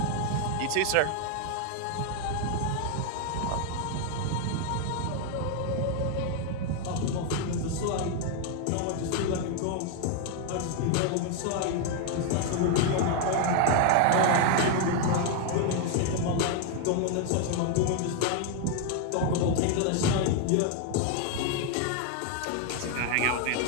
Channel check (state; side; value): different; both; correlation 0.00